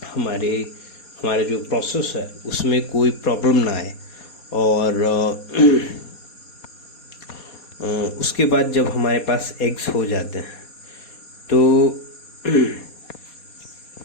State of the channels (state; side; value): late; right; 4.2 ms